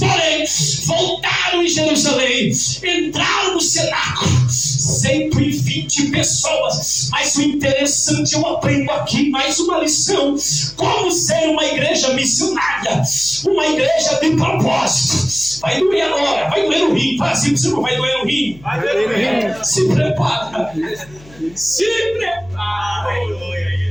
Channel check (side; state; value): left; noise; hum, 23 dB below the sound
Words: voltaram em Jerusalém, entraram no cenáculo, 120 pessoas. Mas o interessante, eu aprendo aqui mais uma lição: como ser uma igreja missionária, uma igreja de propósito. Vai doer agora, vai doer no rim. Fala assim, você não vai doer no rim. Vai doer no rim. Se prepara. Se prepara.